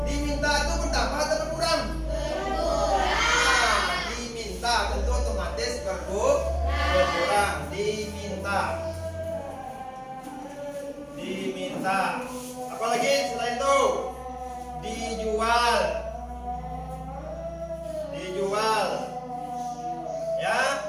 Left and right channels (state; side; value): identical; both; correlation 1.00